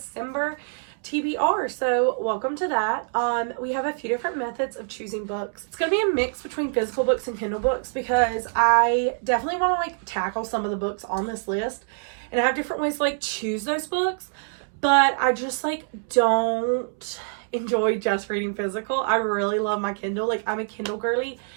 TBR, so welcome to that. We have a few different methods of choosing books. It's going to be a mix between physical books and Kindle books because I definitely want to tackle some of the books on this list, and I have different ways to choose those books, but I just don't enjoy just reading physical. I really love my Kindle. I'm a Kindle girly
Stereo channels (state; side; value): silent; left; 62 dB below the other